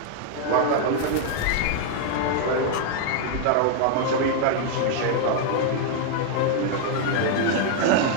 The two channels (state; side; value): different; both; correlation 0.00